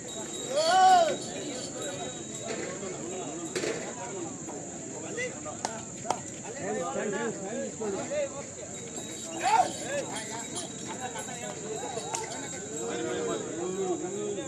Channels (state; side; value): noise; right; rumble, 29 dB below the sound